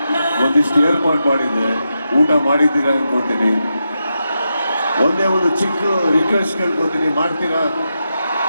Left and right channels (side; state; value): both; inverted; correlation -0.87